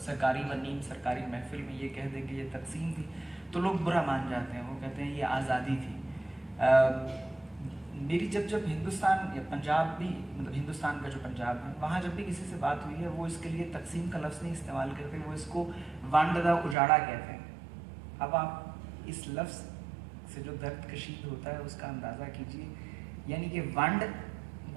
सरकारी व नीम सरकारी महफिल में ये कह दें कि ये तकसीम थी तो लोग बुरा मान जाते हैं, वो कहते हैं ये आज़ादी थी। मेरी जब हिंदुस्तान या पंजाब भी, मतलब हिंदुस्तान का जो पंजाब है, वहाँ जब भी किसी से बात हुई है वो इसके लिए तकसीम का लफ्ज़ नहीं इस्तेमाल करते, वो इसको वंड दा उजाड़ा कहते हैं। अब आप इस लफ्ज़ से जो दर्द कशीद होता है उसका अंदाज़ा कीजिए, यानी कि वंड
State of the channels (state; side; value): drops out; left; at 16.8 s